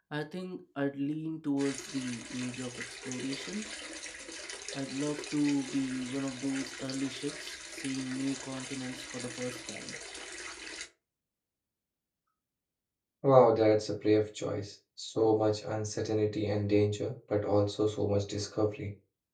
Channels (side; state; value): both; identical; correlation 1.00